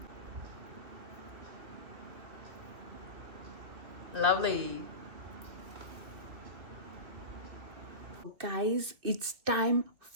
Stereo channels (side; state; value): left; late; 2.7 ms